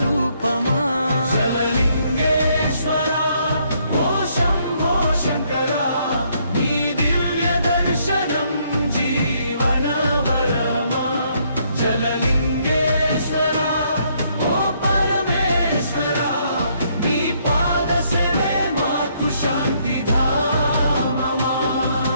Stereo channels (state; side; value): inverted; both; correlation -0.70